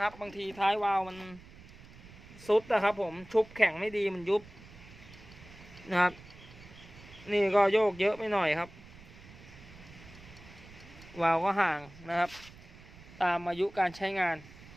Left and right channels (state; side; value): noise; right; rumble, 19 dB below the sound